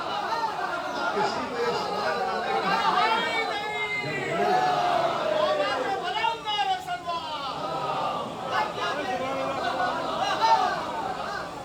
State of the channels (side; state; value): both; identical; correlation 1.00